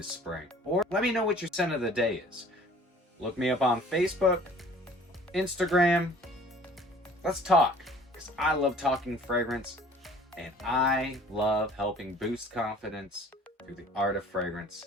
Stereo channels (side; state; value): both; normal; correlation 0.51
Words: spring. Or let me know what your scent of the day is. Look me up on Facebook, Instagram. Let's talk, because I love talking fragrance, and I love helping boost confidence through the art of fragrance